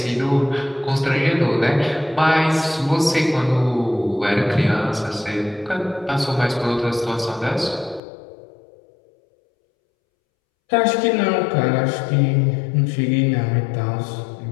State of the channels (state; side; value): drops out; right; at 8.0 s